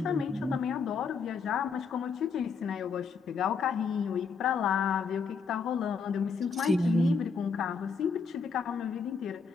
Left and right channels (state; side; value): quieter; right; 5.3 dB